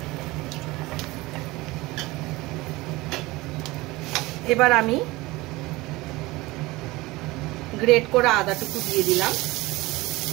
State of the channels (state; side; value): quieter; left; 20.7 dB